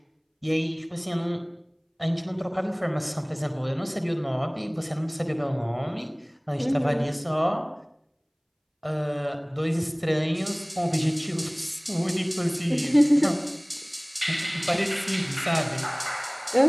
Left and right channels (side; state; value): both; identical; correlation 1.00